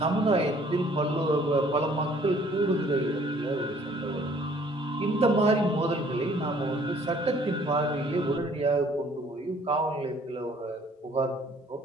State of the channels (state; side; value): normal; both; correlation 0.58